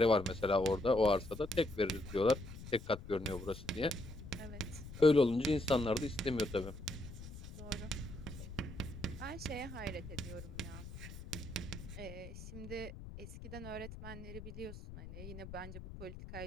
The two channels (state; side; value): noise; left; rumble, 12 dB below the sound